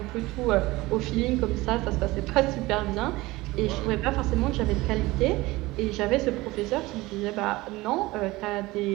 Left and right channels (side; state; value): left; quieter; 20.1 dB